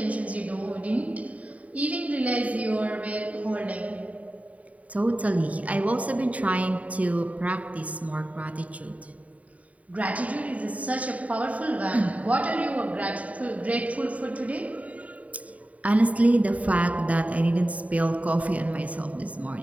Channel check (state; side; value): late; left; 0.069 ms